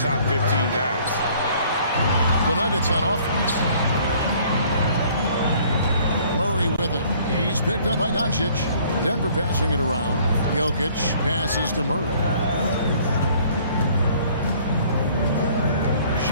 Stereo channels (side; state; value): both; inverted; correlation -0.57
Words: 15 guys. The Nuggets on offense. Murray with it. He's picked up by Doncic. Denver passing it around. Jokic passes to Murray.